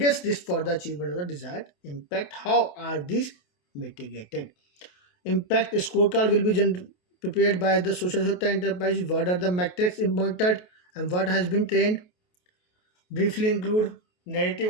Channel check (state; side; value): late; right; 28 ms